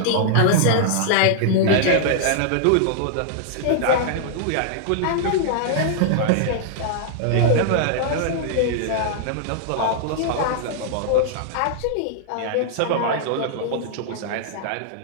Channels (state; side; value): different; both; correlation -0.01